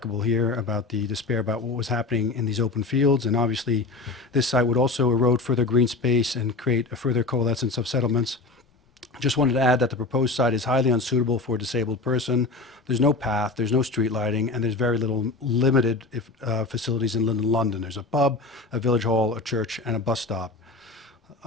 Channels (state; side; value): quieter; right; 3.6 dB